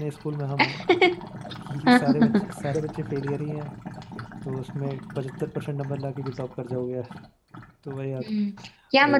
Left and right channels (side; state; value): both; identical; correlation 1.00